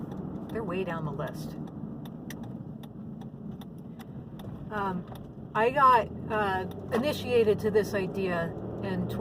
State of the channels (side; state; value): both; identical; correlation 1.00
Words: they're way down the list. I got initiated to this idea in